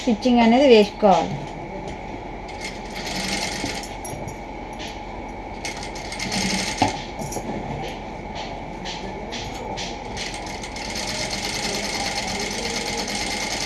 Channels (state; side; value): identical; both; correlation 1.00